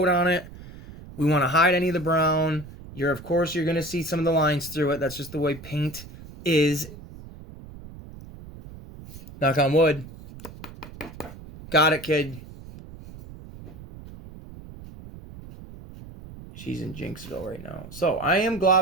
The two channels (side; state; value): right; noise; rumble, 16 dB below the sound